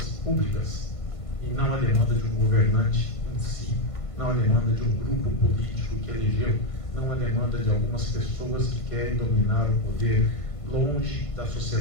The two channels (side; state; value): right; late; 1.5 ms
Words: públicas, e não a demanda de um governante em si, não a demanda de um grupo político que elegeu, não a demanda de algumas pessoas que querem dominar o poder longe da